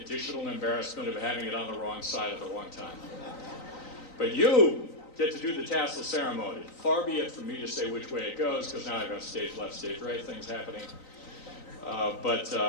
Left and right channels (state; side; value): late; right; 3.9 ms